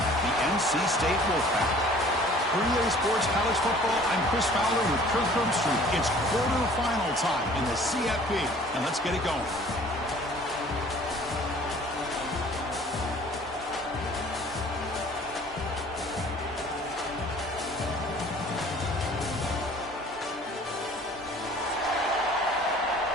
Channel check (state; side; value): normal; both; correlation 0.51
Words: NC State Wolfpack. For EA Sports College Football, I'm Chris Fowler with Kirk Herbstreit. It's quarterfinal time in the CFP, and let's get it going.